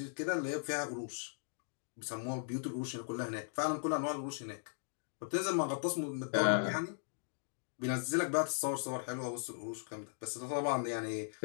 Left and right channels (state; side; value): silent; right; digital silence